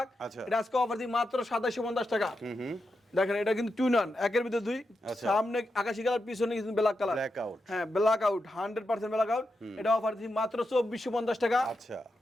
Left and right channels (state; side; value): normal; both; correlation 0.87